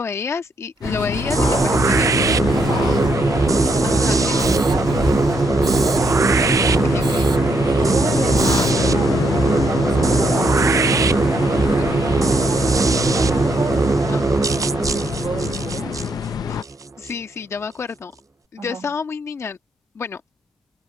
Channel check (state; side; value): normal; both; correlation 0.75